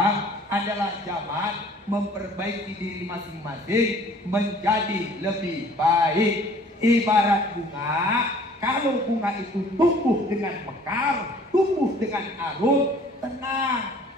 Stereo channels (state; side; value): normal; both; correlation 0.53